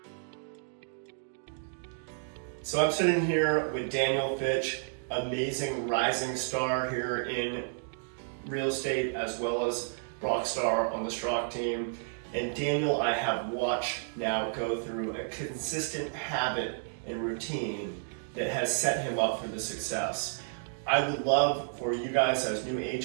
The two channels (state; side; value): silent; left; digital silence